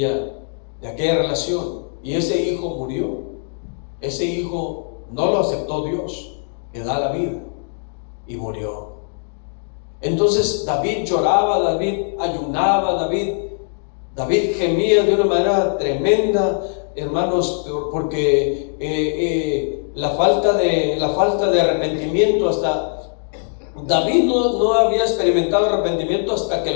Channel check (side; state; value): right; silent; digital silence